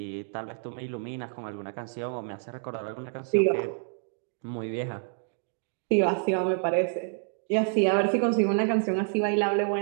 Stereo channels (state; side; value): silent; left; 59 dB below the other